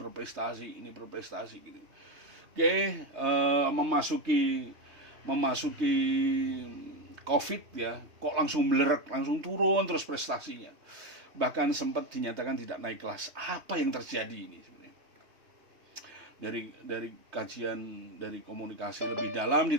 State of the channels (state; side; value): late; left; 3.2 ms